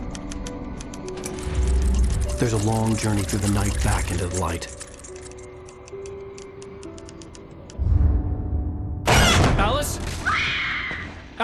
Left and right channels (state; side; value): identical; both; correlation 1.00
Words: There's a long journey through the night back into the light. Alice?